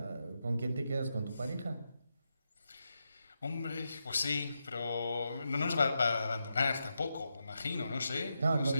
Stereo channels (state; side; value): inverted; both; correlation -0.86